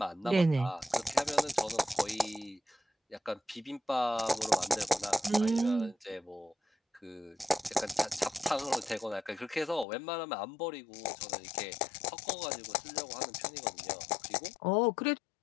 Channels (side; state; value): right; drops out; at 9.9 s